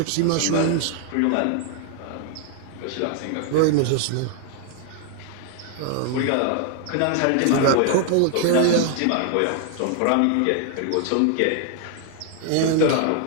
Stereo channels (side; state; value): both; different; correlation 0.00